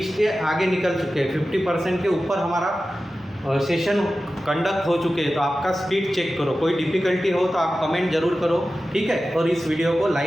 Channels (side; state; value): both; normal; correlation 0.94